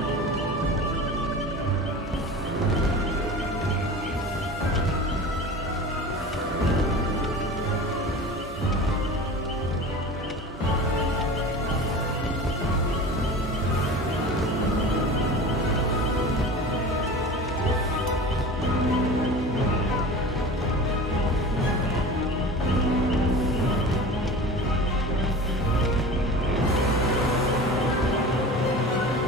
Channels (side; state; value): both; normal; correlation 0.35